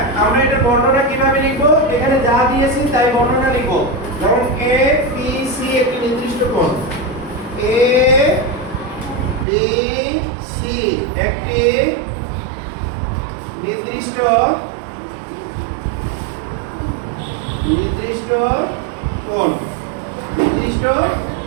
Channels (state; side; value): drops out; left; at 9.5 s